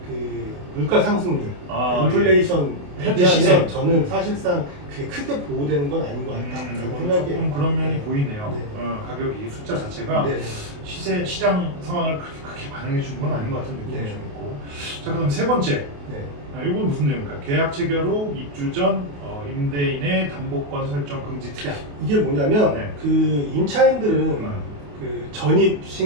그 물가 상승률, 아, 인플레이션 현재 시세. 대비하면 저는 사실상 그게 크게 보호되는 건 아닌 것 같다라고 생각해요. 조금 그런 면이 보이네요. 네. 가격이 숫자 자체가 네. 시장 상황을 그렇게 크게 반영해 주는 건 아닌 것 같은 느낌이 네. 좀 있고. 자, 그다음 세 번째. 네. 이건 무슨 내용입니까? 계약 체결 후 입주 전 임대인의 담보권 설정 금지 특약. 이게 뭐냐면 네. 그 임차인들은 그 전입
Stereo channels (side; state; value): left; late; 28 ms